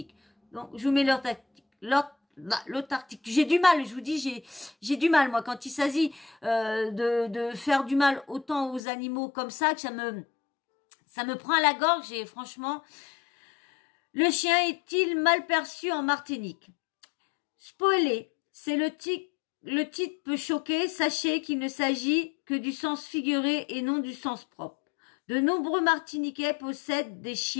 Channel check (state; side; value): drops out; right; at 8.8 s